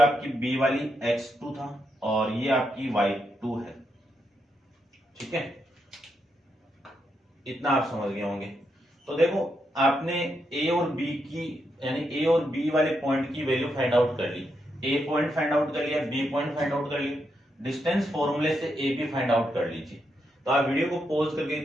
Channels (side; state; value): both; normal; correlation 0.81